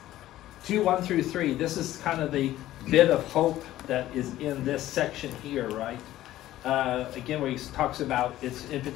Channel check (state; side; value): quieter; right; 14.4 dB